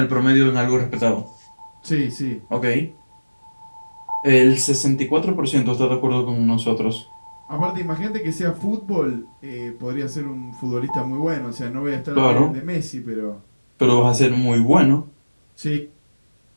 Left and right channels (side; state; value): both; inverted; correlation -1.00